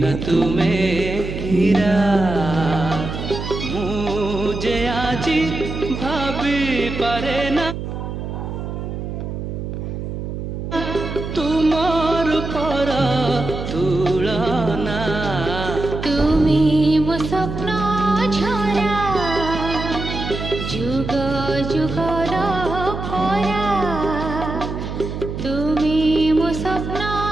तुम्हें हीरा। मुझे आज भाभी पारे ना तुमर पर तुलना। তুমি মো স্বপ্ন ঝরা, যুগ যুগর পরা। তুমি মো স্বপ্ন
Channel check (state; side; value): noise; right; hum, 6 dB below the sound